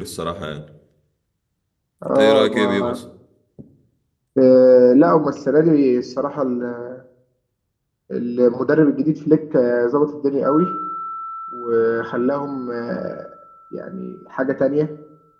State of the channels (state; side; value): identical; both; correlation 1.00